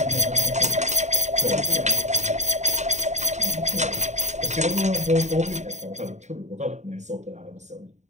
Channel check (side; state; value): left; late; 0.34 ms